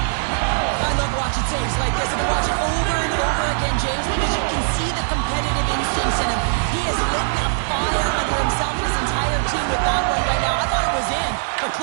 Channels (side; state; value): left; silent; digital silence